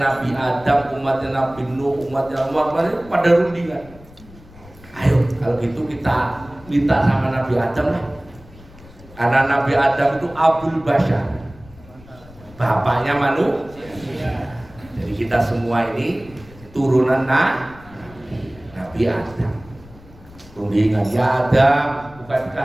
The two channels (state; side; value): noise; left; rumble, 22 dB below the sound